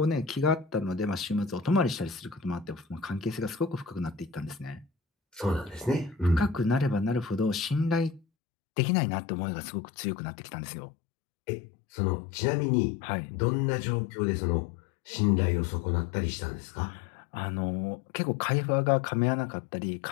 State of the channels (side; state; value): right; drops out; at 8.2 s